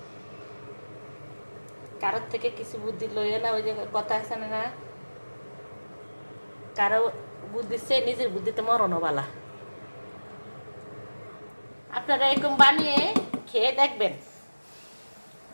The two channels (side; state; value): both; inverted; correlation -1.00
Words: কারোর থেকে কিছু বুদ্ধি লইও না, ওই যে কথা আছে না, কারো বুদ্ধি সে নিজের বুদ্ধিতে মরণও বালা। আপনারা এরকম বানিয়ে খেয়ে দেখবেন।